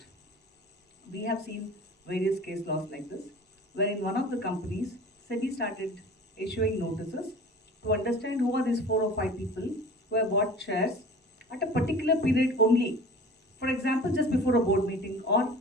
We have seen various case laws like this, where in one of the companies, SEBI started issuing notices to understand who are these 4 or 5 people who have bought shares at a particular period only. For example, just before a board meeting or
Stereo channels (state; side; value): normal; both; correlation 0.42